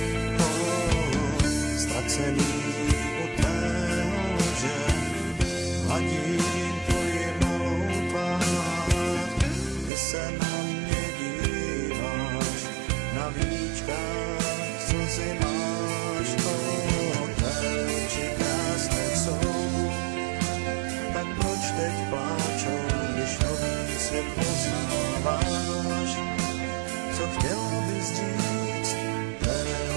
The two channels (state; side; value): drops out; left; at 9.9 s